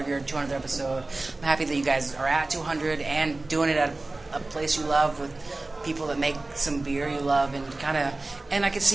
your 200th episode. I'm happy that you guys are at 200 and doing it at a place you love with people that make some beer you love and I can see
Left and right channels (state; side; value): quieter; left; 3.1 dB